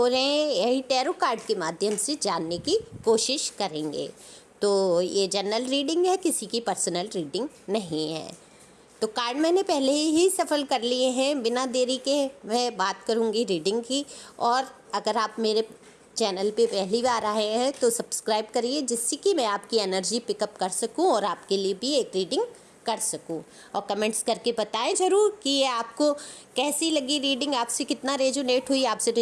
रहे हैं, यही टैरो कार्ड के माध्यम से जानने की कोशिश करेंगे। तो ये जनरल रीडिंग है, किसी की पर्सनल रीडिंग नहीं है। तो कार्ड मैंने पहले ही सफल कर लिए हैं। बिना देरी के मैं बात करूंगी रीडिंग की। और अगर आप मेरे चैनल पे पहली बार आए हैं तो सब्सक्राइब करिए, जिससे कि मैं आपकी एनर्जी पिकअप कर सकूं और आपके लिए भी एक रीडिंग कर सकूं। और कमेंट्स करके बताएं ज़रूर कि ये आपको कैसी लगी रीडिंग, आपसे कितना रेजोनेट हुई। आपसे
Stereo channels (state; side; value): identical; both; correlation 1.00